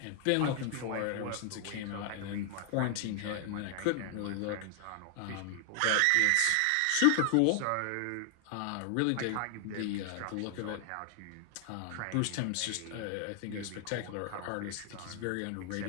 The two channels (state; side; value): different; both; correlation 0.00